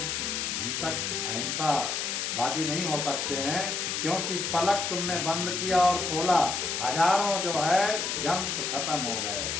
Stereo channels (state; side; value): noise; left; hiss, 1 dB below the sound